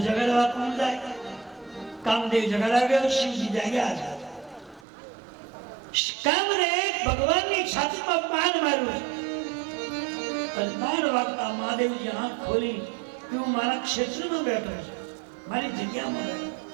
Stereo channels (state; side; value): drops out; left; at 4.9 s